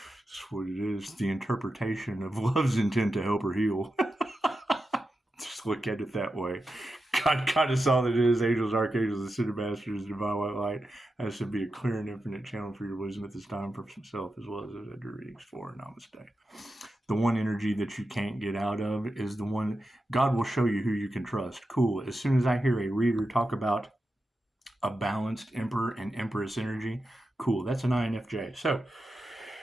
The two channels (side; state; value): both; normal; correlation 0.90